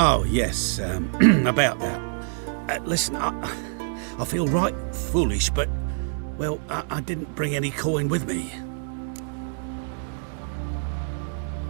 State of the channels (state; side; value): silent; left; digital silence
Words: yes, about that. Listen, I feel right foolish, but, well, I didn't bring any coin with me.